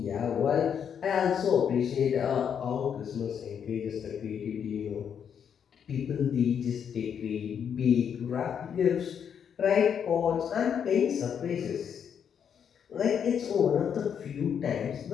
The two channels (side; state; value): right; quieter; 7.9 dB